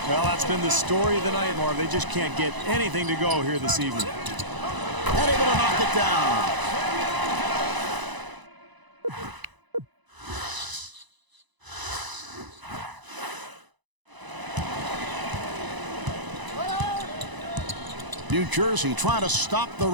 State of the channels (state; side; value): late; left; 1.0 ms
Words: Well, that's been the story of the night, Marv. They just can't get anything to go here this evening. And able to knock it down. New Jersey trying to stop the